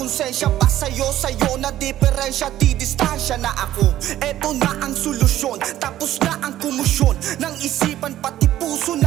pa sa'yo na diferensya, di distansya na ako. Eto na ang solusyon, tapos na ang kumusyon ng isipan pati puso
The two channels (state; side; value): quieter; left; 13.2 dB